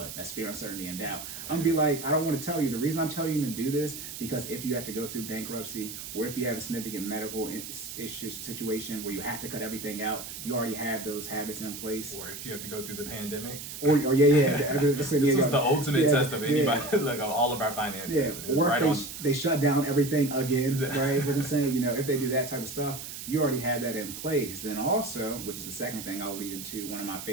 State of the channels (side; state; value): right; noise; hiss, 9 dB below the sound